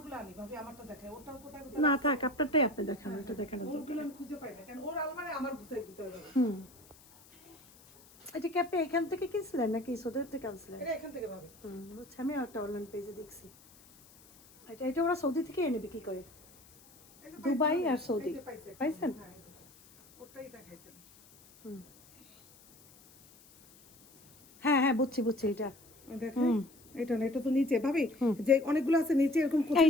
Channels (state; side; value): noise; left; hiss, 25 dB below the sound